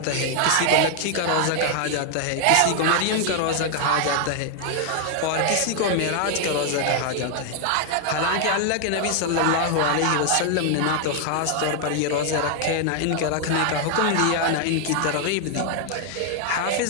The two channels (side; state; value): both; different; correlation 0.00